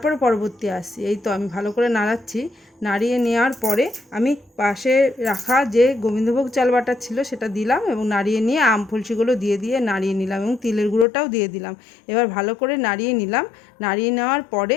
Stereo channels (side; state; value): right; drops out; at 11.1 s